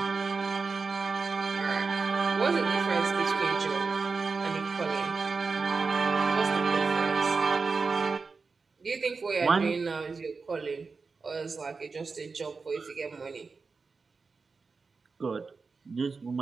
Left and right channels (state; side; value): quieter; left; 4.5 dB